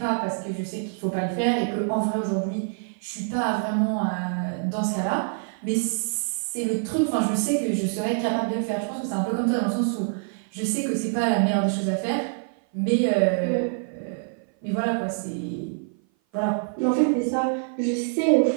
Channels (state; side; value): silent; left; 56 dB below the other